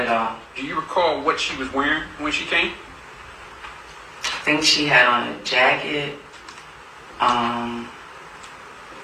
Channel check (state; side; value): identical; both; correlation 1.00